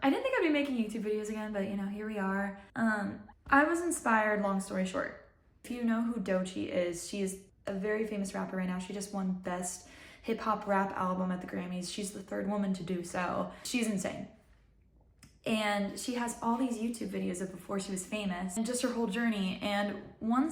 I didn't think I'd be making YouTube videos again, but you know, here we are. I was inspired, long story short. If you know who Doechii is, she is a very famous rapper right now. She just won Best Hip Hop Rap Album at the Grammys. She's the third woman to do so. She's insane. And she has all these YouTube videos of before she was famous and just her whole journey. And one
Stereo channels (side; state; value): both; identical; correlation 1.00